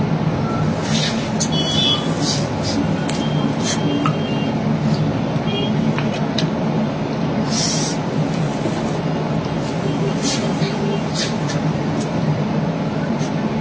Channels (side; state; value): both; identical; correlation 1.00